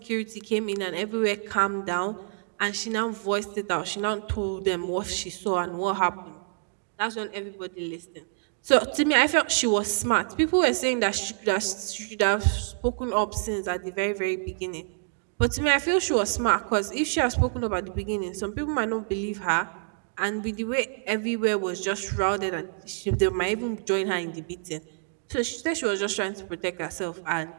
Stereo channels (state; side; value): silent; left; digital silence